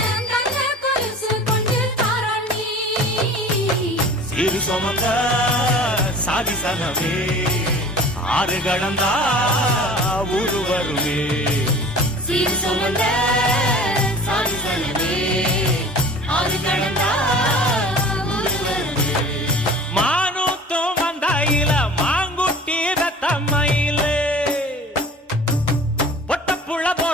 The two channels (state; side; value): normal; both; correlation 0.43